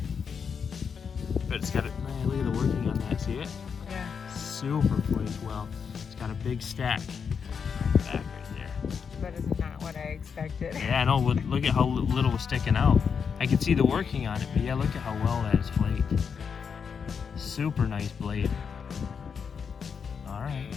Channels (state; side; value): quieter; right; 6.4 dB